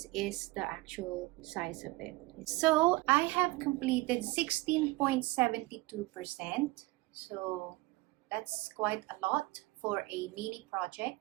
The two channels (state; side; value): quieter; left; 21.6 dB